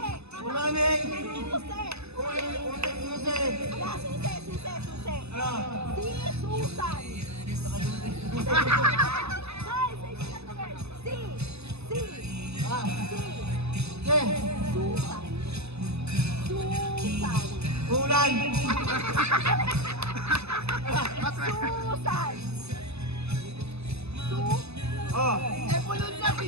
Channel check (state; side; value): late; left; 0.79 ms